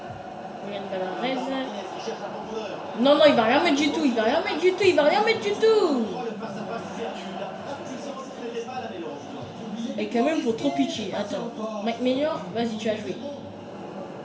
Yann Balarez. Martinez qui cherche la profondeur. Non, il va rien mettre du tout. Il va rien mettre du tout. Le face-à-face perdu. La frappe puissante n'était pas la mélange. Et quand même, faut trop pitcher. Attends. Mike Maignan, vas-y, tu as joué.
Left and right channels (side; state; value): both; identical; correlation 1.00